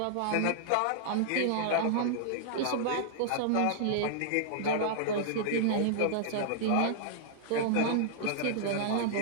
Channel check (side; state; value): both; different; correlation -0.01